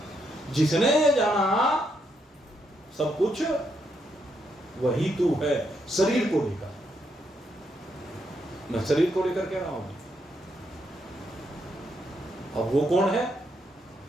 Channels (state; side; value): normal; both; correlation 0.78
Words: जिसने ये जाना सब कुछ, वही तू है शरीर को लेकर। मैं शरीर को लेकर कह रहा हूं। अब वो कौन है?